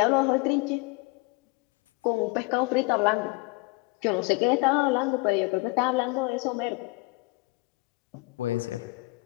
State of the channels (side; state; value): right; quieter; 25.0 dB